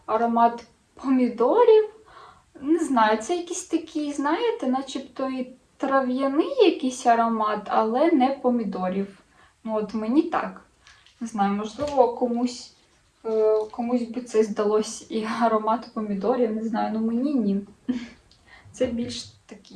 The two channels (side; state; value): both; identical; correlation 1.00